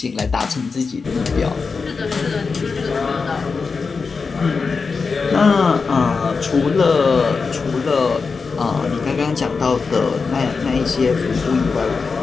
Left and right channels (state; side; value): quieter; right; 4.8 dB